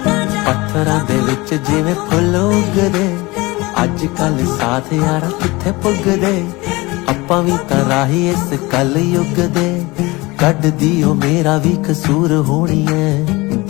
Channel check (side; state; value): right; quieter; 22.8 dB